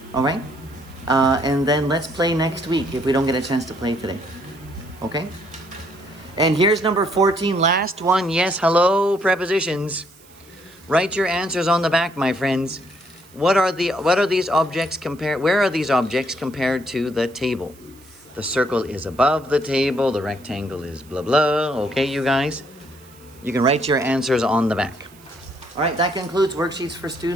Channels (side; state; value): right; noise; hiss, 26 dB below the sound